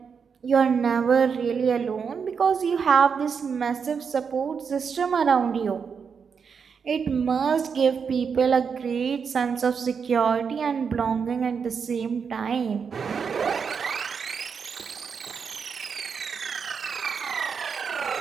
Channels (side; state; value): left; quieter; 6.2 dB